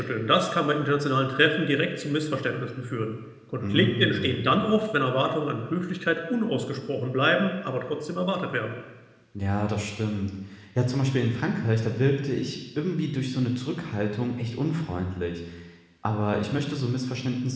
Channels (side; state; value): both; identical; correlation 1.00